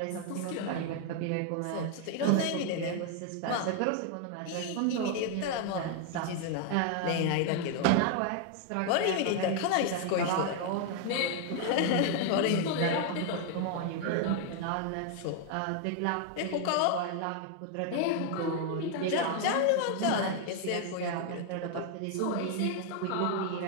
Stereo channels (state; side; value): different; both; correlation 0.00